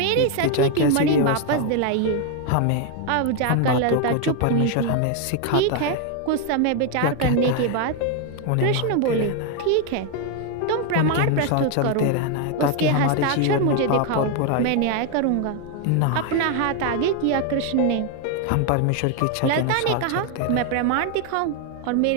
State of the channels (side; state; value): both; different; correlation 0.01